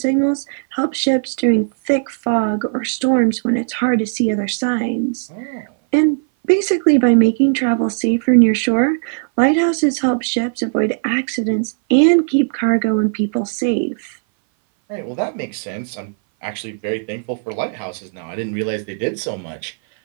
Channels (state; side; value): silent; left; 60 dB below the other